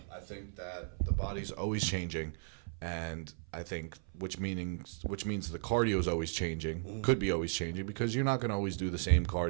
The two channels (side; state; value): left; silent; 54 dB below the other